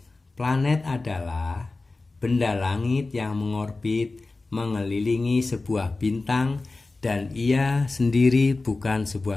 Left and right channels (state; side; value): quieter; right; 3.4 dB